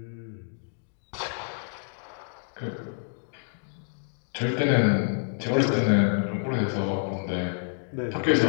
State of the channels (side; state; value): right; silent; digital silence